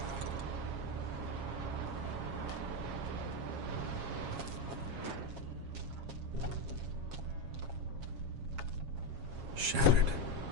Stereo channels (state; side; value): late; left; 7.3 ms